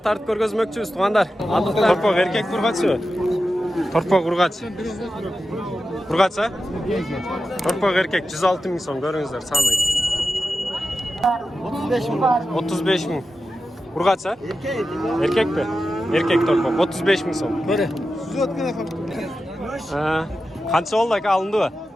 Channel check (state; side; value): normal; both; correlation 0.92